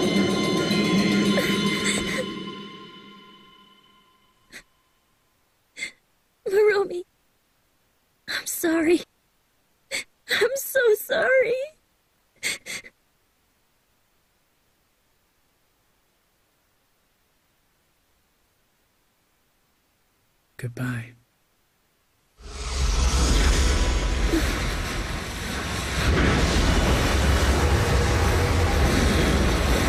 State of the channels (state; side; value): identical; both; correlation 1.00